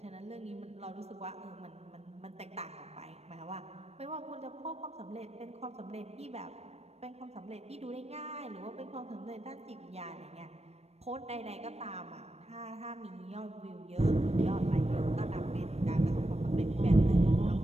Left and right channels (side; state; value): left; late; 0.31 ms